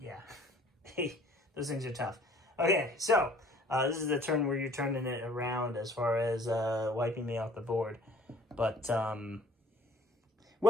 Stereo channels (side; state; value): both; normal; correlation 0.54